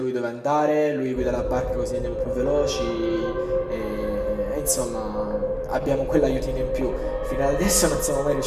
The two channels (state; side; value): identical; both; correlation 1.00